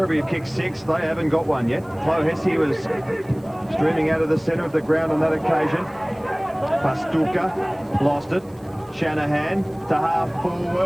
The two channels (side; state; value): right; noise; hiss, 29 dB below the sound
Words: have kicked 6. They haven't got one yet. Clohessy was streaming out of the centre of the ground on that occasion. Pastuka lost it. Shanahan to half